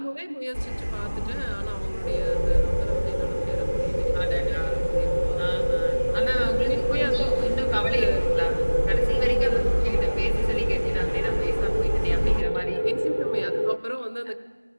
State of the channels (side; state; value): both; inverted; correlation -1.00